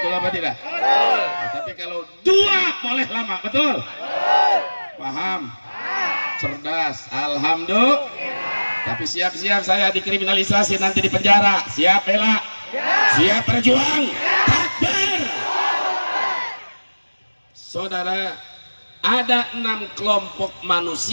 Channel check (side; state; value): both; inverted; correlation -1.00